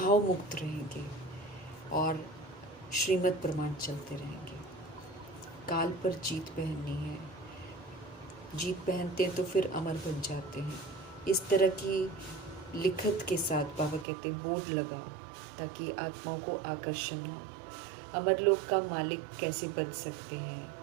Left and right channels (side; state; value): left; drops out; at 14.1 s